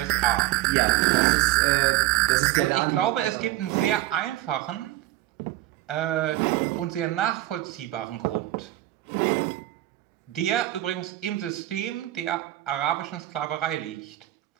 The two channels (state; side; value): quieter; left; 15.3 dB